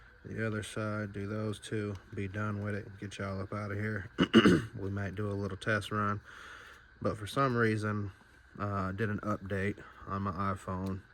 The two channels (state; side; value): identical; both; correlation 1.00